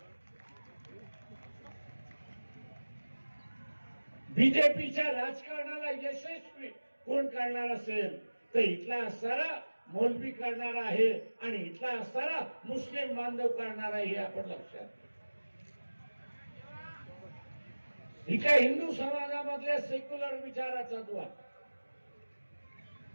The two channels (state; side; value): inverted; both; correlation -1.00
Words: बीजेपीच्या राजकारणाला यशस्वी कोण करणार असेल तर इथला असणारा मौलवी करणार आहे आणि इथला असणारा मुस्लिम बांधव करणार आहे, हे आपण लक्षात घ्या. इथल्या हिंदू समाजामधल्या सेक्युलर विचाराचा द्वार,